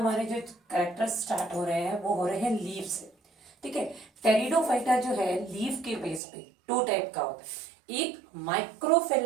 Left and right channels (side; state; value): left; drops out; at 6.2 s